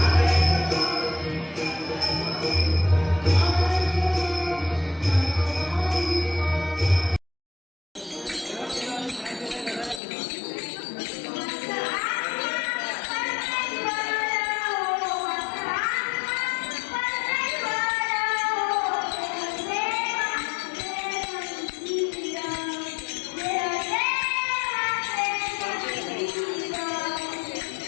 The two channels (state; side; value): drops out; right; at 10.0 s